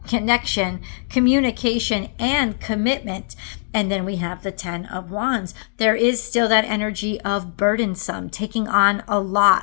connection, communication, and commitment. And then we have the 10 of Wands. There is still that energy of burdensome, taking on a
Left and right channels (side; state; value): right; silent; digital silence